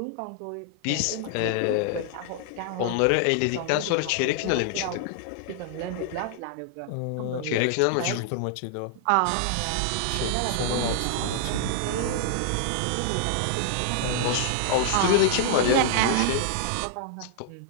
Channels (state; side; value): different; both; correlation -0.01